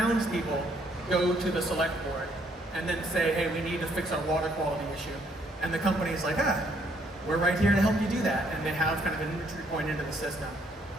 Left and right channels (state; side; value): normal; both; correlation 0.68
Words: go to the select board and then say, hey, we need to fix our water quality issue. And the company's like, we're right here to help you do that. And they have kind of an entry point into the system.